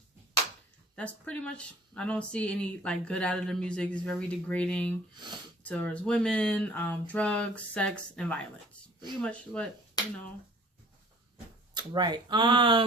That's pretty much. I don't see any like good out of the music. It's very degrading towards women, drugs, sex, and violence. Pretty much what, you know. Right.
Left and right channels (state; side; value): normal; both; correlation 0.51